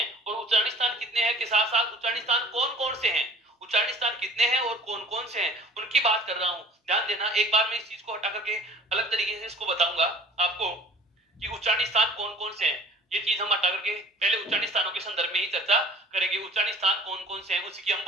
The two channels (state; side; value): normal; both; correlation 0.47